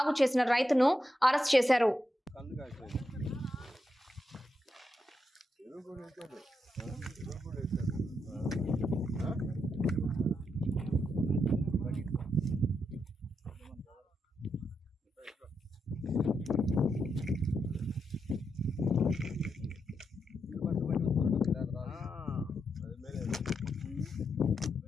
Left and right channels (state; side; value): normal; both; correlation 0.84